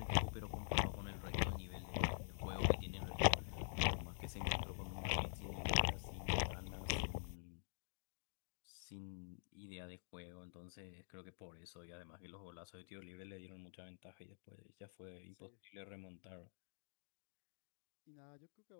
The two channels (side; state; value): right; silent; digital silence